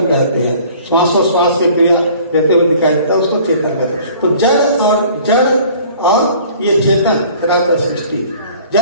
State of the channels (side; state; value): both; inverted; correlation -0.51